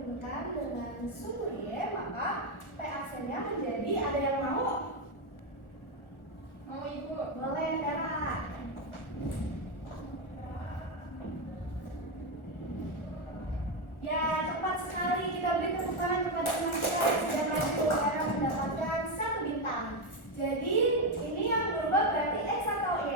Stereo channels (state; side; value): late; right; 1.4 ms